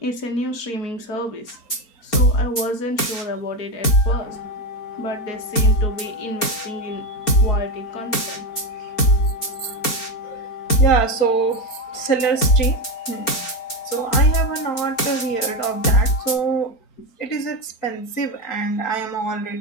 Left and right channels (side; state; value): right; late; 4.4 ms